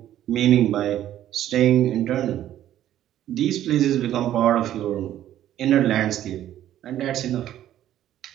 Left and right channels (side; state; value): left; quieter; 12.1 dB